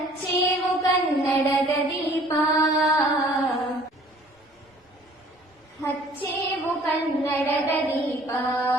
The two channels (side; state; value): both; normal; correlation 0.54